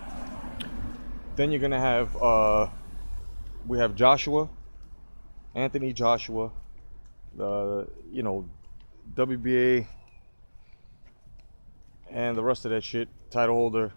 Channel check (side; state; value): both; inverted; correlation -1.00